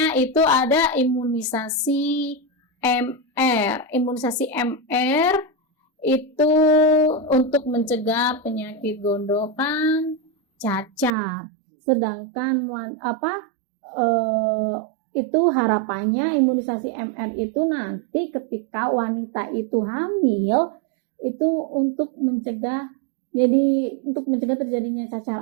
itu ada imunisasi MR. Imunisasi MR itu untuk mencegah penyakit gondokan, cacar. Sedangkan itu harapannya imunisasi MR itu nanti ketika wanita itu hamil itu untuk mencegah terjadinya cacar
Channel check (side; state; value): left; drops out; at 11.2 s